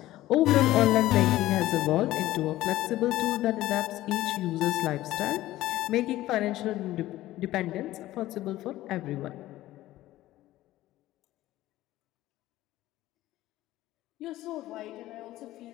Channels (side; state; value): right; quieter; 15.6 dB